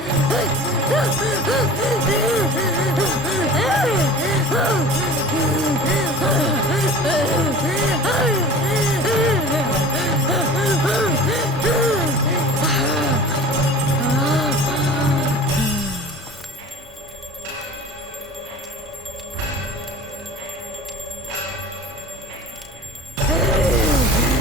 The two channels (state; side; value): normal; both; correlation 0.40